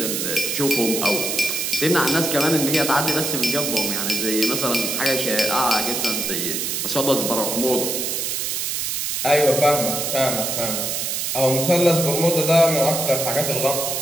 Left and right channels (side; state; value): right; noise; hiss, 1 dB below the sound